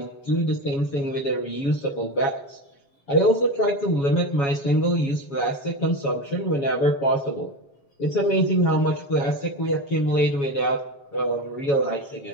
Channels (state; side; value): late; right; 7.2 ms